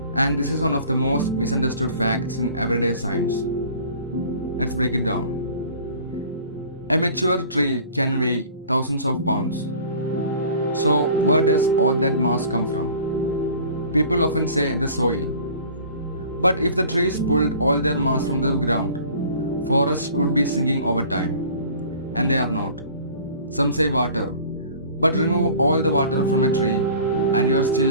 And this is one of the most misunderstood facts in everyday science. Let's break it down. A mature tree can weigh thousands of pounds. So where does all that mass come from? People often say the soil. But if the trees pulled all their mass from the ground, forests would be sinking over time. And they are not. Some say water. But remove all the water from a tree and you are still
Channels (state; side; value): inverted; both; correlation -0.46